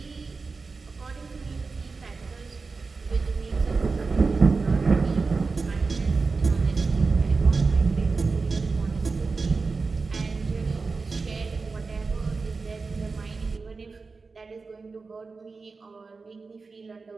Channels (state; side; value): quieter; left; 4.3 dB